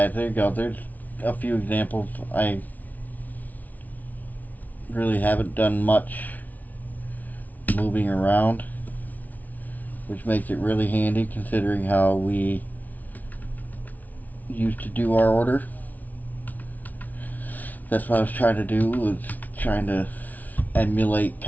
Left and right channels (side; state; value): right; late; 0.077 ms